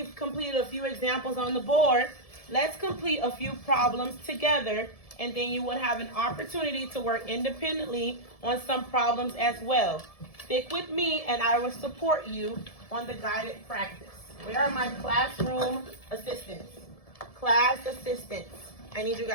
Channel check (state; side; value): late; right; 1.7 ms